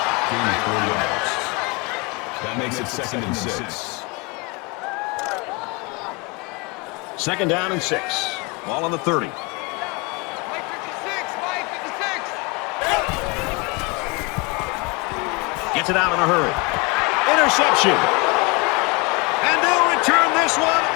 That makes it 2nd and 6. 2nd down and 6. Ball on the 30. Gets it out in a hurry. Interception. And they'll return this one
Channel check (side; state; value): right; quieter; 27.2 dB